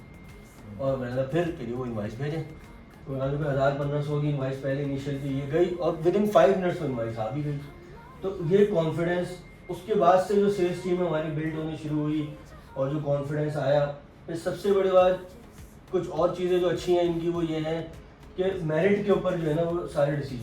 और मैंने फिर कह वो इनवाइस भेजें, तो मैंने कहा 1000-1500 की इनवाइस पहले इनिशियल थी, ये गई और विद इन 5 मिनट्स में इनवाइस आ भी गई। तो ये कॉन्फिडेंस, उसके बाद से जो सेल्स टीम हमारी बिल्ड होनी शुरू हुई और जो कॉन्फिडेंस आया। फिर सबसे बड़ी बात, कुछ और चीज़ें जो अच्छी हैं इनकी वो ये हैं कि मेरिट के ऊपर जो है ना वो सारे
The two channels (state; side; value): identical; both; correlation 1.00